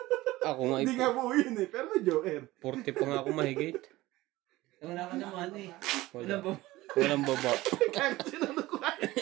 Ako nga Hindi nga buo yun eh. Pero joker. 40 pa nga ako mahigit. Wala ka naman eh. Wala. Wala ba? Walang baba. Kahit sinunod ko ay.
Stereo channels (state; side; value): quieter; left; 18.2 dB